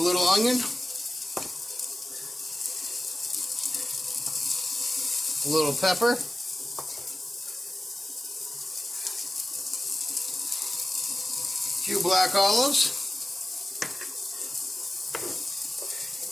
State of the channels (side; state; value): both; normal; correlation 0.95